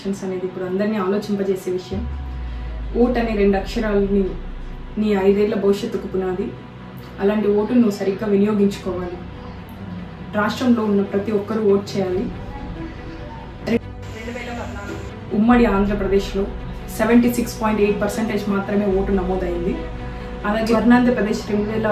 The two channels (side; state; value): both; identical; correlation 1.00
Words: అనేది ఇప్పుడు అందరినీ ఆలోచింపజేసే విషయం. ఓట్ అనే 2 అక్షరాలని నీ 5 ఏళ్ల భవిష్యత్తుకు పునాది. అలాంటి ఓటును నువ్వు సరిగ్గా వినియోగించుకోవాలి. రాష్ట్రంలో ఉన్న ప్రతి ఒక్కరూ ఓట్ చేయాలి. 2014 ఉమ్మడి ఆంధ్రప్రదేశ్లో 76.8% మాత్రమే ఓటు నమోదైంది. అలాగే ఆంధ్రప్రదేశ్